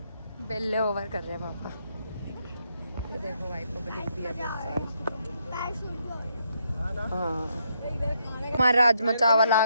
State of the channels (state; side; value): inverted; both; correlation -0.77